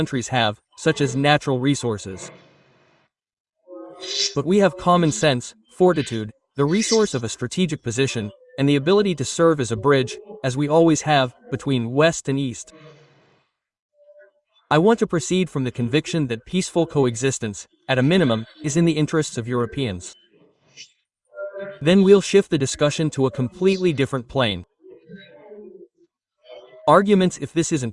have, such as natural resources. But we have common sense, fortitude, the resource of a strategic position, and the ability to serve as a bridge, as we always have, between West and East. I want to proceed from the conviction that peaceful coexistence, at a minimum, is in the interests of Europeans. Then we'll shift the discussion to a completely different plane. Arguments if this isn't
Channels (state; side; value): identical; both; correlation 1.00